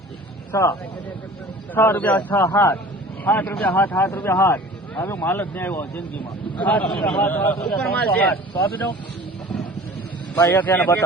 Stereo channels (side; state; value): both; normal; correlation 0.44